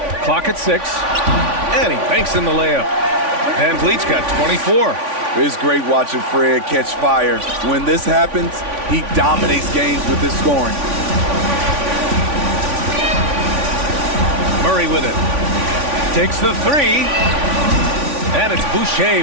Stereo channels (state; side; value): late; left; 3.5 ms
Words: Clock at 6. And he banks in the layup. Van Vliet's got 24. It's great watching Fred catch fire. When this happens, he dominates games with his scoring. Murray with it. Takes the three. And it's